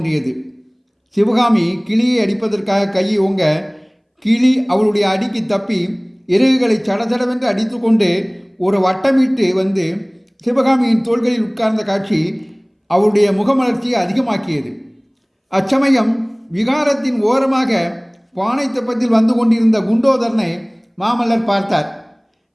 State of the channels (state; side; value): identical; both; correlation 1.00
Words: சிவகாமி கிளியை அடிப்பதற்காக கையை ஓங்க கிளி அவளுடைய அடிக்கு தப்பி இறகுகளை சடசடவென்று அடித்து கொண்டு ஒரு வட்டமிட்டு வந்து சிவகாமியின் தோள்களில் உட்கார்ந்த காட்சி அவளுடைய முகமலர்ச்சியை அதிகமாக்கியது. அச்சமயம் விகாரத்தின் ஓரமாக பானை தெப்பத்தில் வந்து கொண்டிருந்த குண்டோதரனை மாமல்லர் பார்த்தார்.